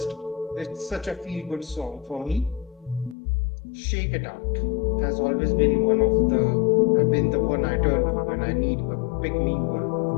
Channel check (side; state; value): right; drops out; at 3.2 s